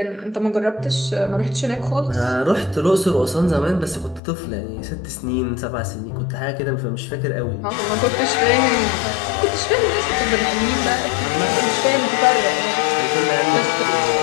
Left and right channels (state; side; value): drops out; right; at 4.2 s